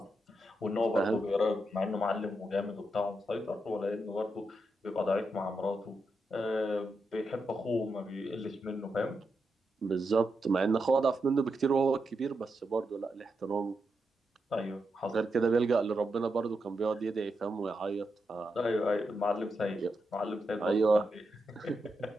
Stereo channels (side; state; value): both; normal; correlation 0.85